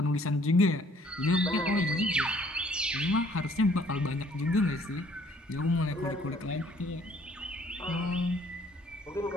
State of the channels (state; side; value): normal; both; correlation 0.60